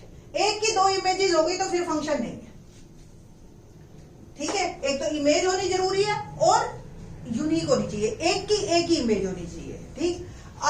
एक की 2 इमेजेस हो गई तो फिर फंक्शन नहीं है, ठीक है। एक तो इमेज होनी जरूरी है और यूनिक होनी चाहिए, एक की एक ही इमेज होनी चाहिए, ठीक।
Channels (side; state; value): both; identical; correlation 1.00